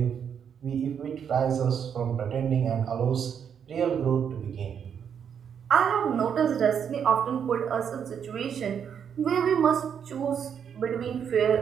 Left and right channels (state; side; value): quieter; left; 7.8 dB